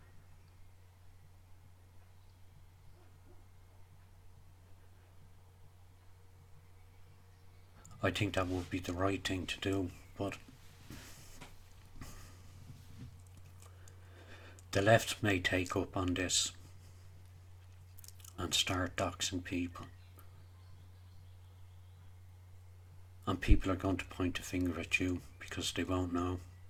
I think that would be the right thing to do, but the left may take up on this and start doxing people. And people are going to point a finger at you because they won't know.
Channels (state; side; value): identical; both; correlation 1.00